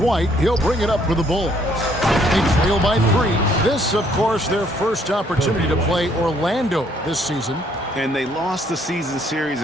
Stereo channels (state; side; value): normal; both; correlation 0.66